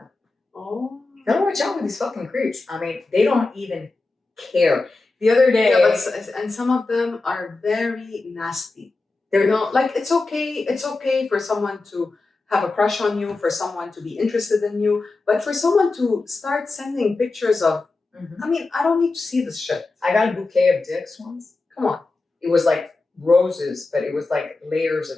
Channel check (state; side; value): quieter; right; 3.5 dB